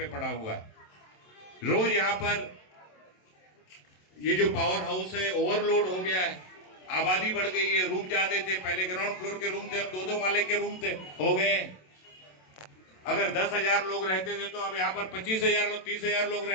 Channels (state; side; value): late; right; 27 ms